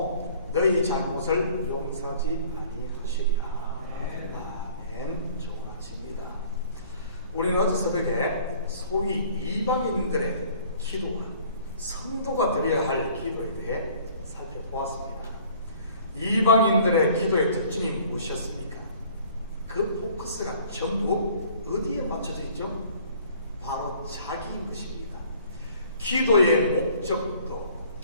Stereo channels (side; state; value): both; inverted; correlation -0.53